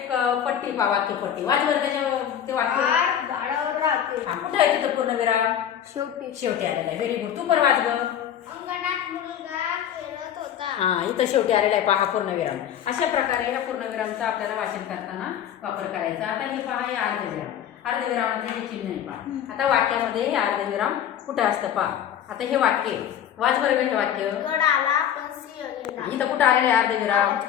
पट्टी पहा, वाक्य पट्टी वाच बरं. त्याच्या ते वाक्य झाडावर राहते. कुठे आहे तिथं पूर्णविराम? शेवटी आलेला आहे. Very good. तू पण वाच ग. अंगणात मुलगा खेळत होता. हा, इथं शेवटी आलेला आहे पहा पूर्णविराम. अशा प्रकारे या पूर्णविरामचा आपल्याला वाचन करताना वापर करायचा. आता हे पहा, हे अर्धविराम. अर्धविरामाचे हे चिन्ह आहे पहा. आता वाक्यामध्ये हे अर्धविराम कुठं असतं पहा. आता हे वाक्य वाच बरं. हे वाक्य गड आला पण सिंह गेला. इथं कुठं आलेलं आहे अर्धविराम?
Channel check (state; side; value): quieter; right; 9.8 dB